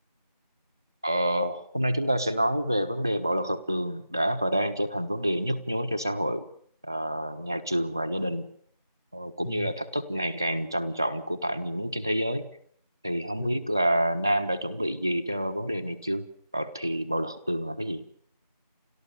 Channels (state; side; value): inverted; both; correlation -0.90